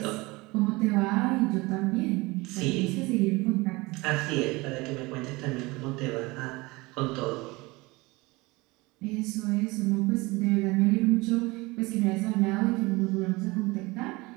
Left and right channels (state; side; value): quieter; left; 23.1 dB